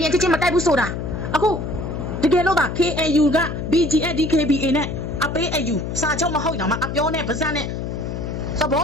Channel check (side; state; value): left; noise; hum, 5 dB below the sound